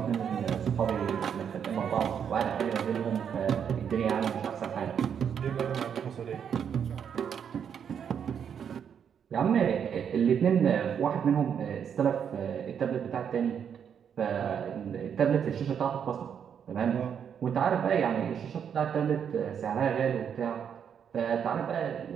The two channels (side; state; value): left; quieter; 7.9 dB